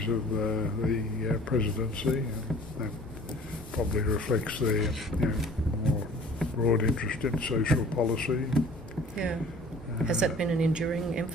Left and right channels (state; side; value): normal; both; correlation 0.49